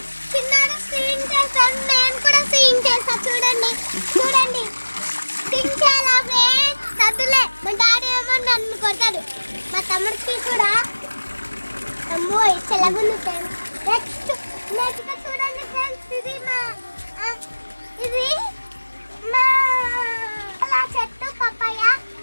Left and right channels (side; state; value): both; inverted; correlation -1.00